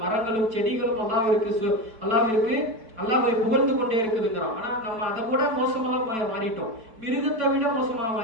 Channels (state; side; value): late; left; 4.6 ms